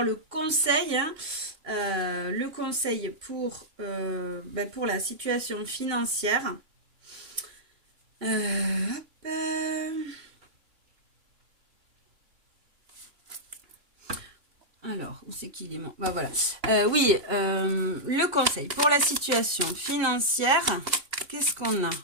le conseil, hein. Le conseil pour la situation financière. Alors, où c'est qu'il est mon... Bah voilà. Oui, le conseil pour la situation financière. Qu'est-ce qu'on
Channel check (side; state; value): left; late; 2.9 ms